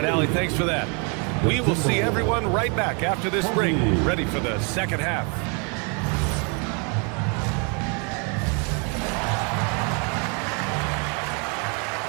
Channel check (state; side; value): quieter; left; 35.7 dB